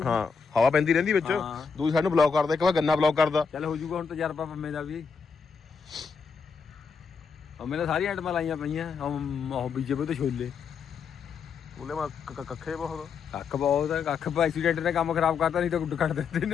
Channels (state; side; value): quieter; right; 5.7 dB